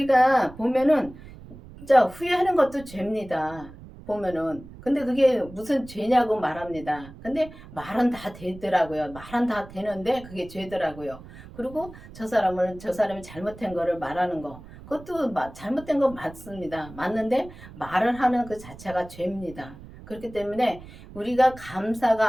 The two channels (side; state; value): right; noise; rumble, 17 dB below the sound